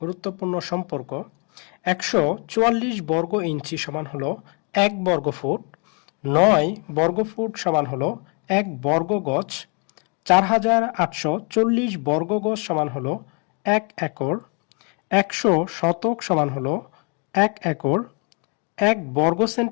গুরুত্বপূর্ণ সম্পর্ক। ১৪৪ বর্গ ইঞ্চি সমান হলো ১ বর্গ ফুট, ৯ বর্গ ফুট সমান হলো ১ বর্গ গজ, ৪৮৪০ বর্গ গজ সমান হলো ১ একর, ১০০ শতক সমান হলো ১ একর, ১ বর্গ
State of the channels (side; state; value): right; quieter; 35.6 dB